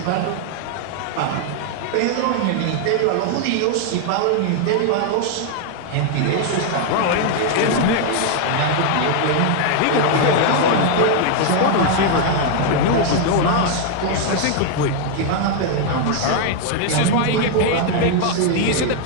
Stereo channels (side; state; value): both; different; correlation 0.00